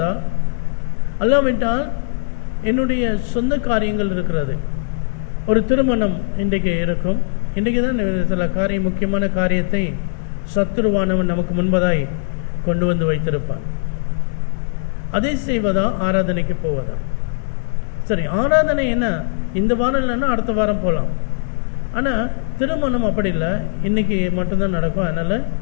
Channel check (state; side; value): silent; right; digital silence